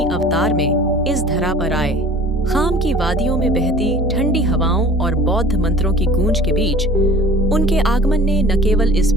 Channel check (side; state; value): both; normal; correlation 0.46